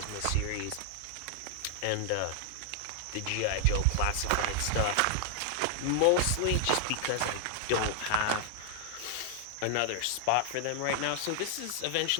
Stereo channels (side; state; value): both; different; correlation 0.00